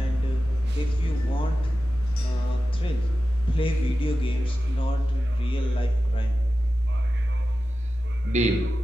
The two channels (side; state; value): both; normal; correlation 0.94